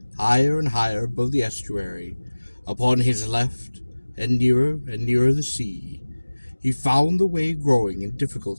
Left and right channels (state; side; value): inverted; both; correlation -1.00